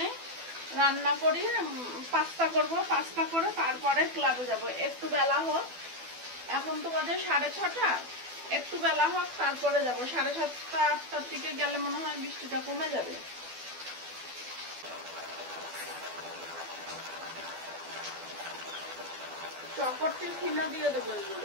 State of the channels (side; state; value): left; late; 12 ms